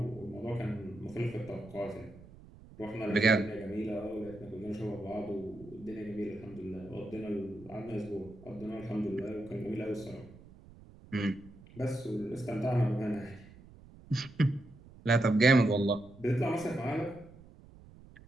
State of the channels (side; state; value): right; noise; rumble, 21 dB below the sound